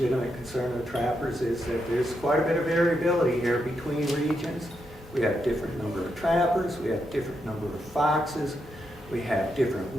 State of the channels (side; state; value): both; normal; correlation 0.82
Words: concern of trappers, is that there's quite a bit of variability here between regions. We have different number of trappers, we have different number of foxes, we have different